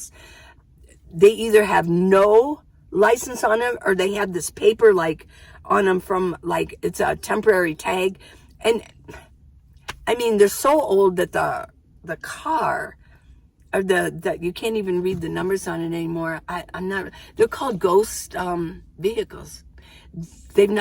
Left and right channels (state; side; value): identical; both; correlation 1.00